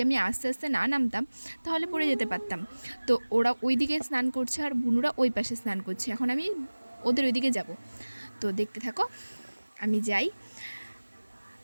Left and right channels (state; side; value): inverted; both; correlation -1.00